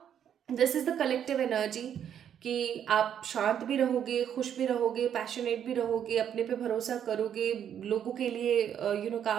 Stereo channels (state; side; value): quieter; left; 9.2 dB